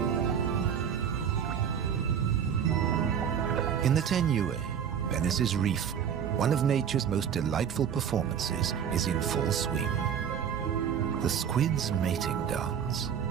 In the Tenue, Venice's reef, one of nature's most delightful performances is in full swing. The squid's mating dance.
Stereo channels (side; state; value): left; quieter; 8.1 dB